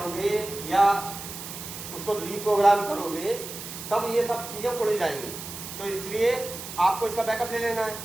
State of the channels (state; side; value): noise; right; hiss, 10 dB below the sound